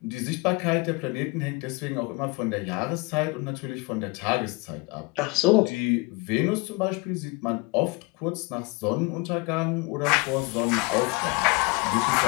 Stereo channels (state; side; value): quieter; right; 27.1 dB